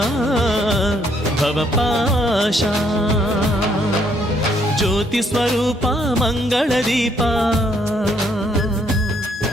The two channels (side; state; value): both; normal; correlation 0.69